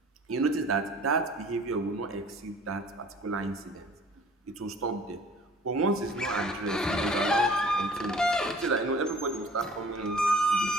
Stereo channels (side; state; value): both; normal; correlation 0.50